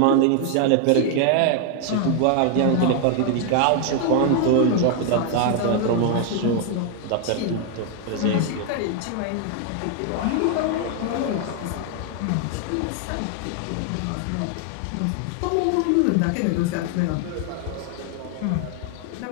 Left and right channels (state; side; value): different; both; correlation 0.00